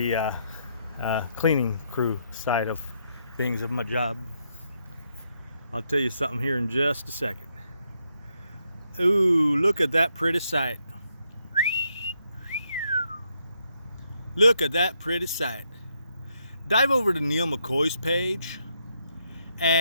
cleaning crew side of things of my job. I'll tell you something here in just a second. Ooh, look at that pretty sight. Look at that pretty sight. Dive over to Neal McCoy's page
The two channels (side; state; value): both; inverted; correlation -0.77